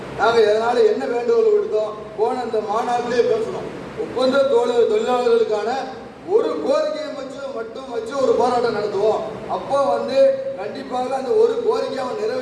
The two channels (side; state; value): both; identical; correlation 1.00